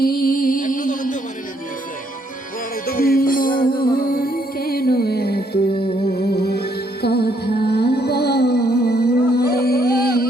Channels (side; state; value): both; normal; correlation 0.71